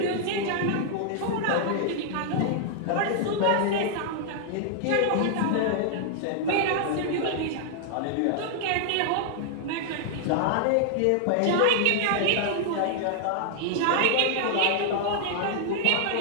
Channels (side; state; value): both; different; correlation -0.01